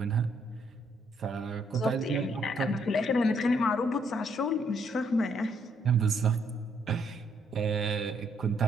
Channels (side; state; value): both; normal; correlation 0.71